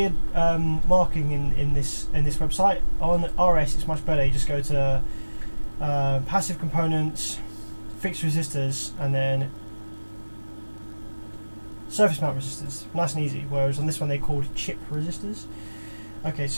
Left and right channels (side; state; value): both; inverted; correlation -1.00